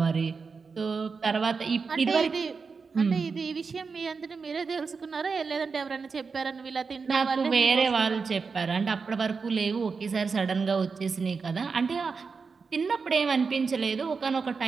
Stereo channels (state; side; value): quieter; left; 5.0 dB